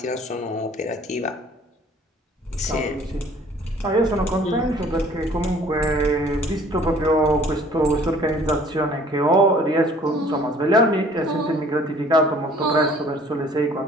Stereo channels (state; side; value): normal; both; correlation 0.54